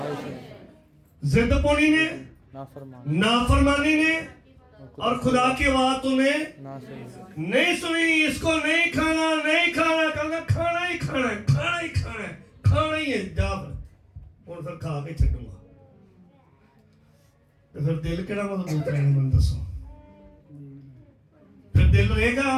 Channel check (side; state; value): both; identical; correlation 1.00